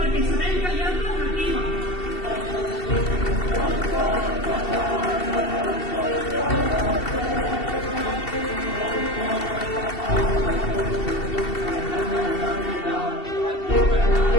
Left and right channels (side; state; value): right; late; 2.7 ms